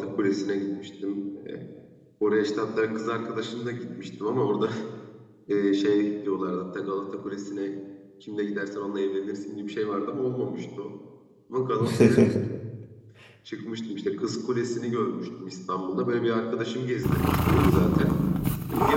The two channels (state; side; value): identical; both; correlation 1.00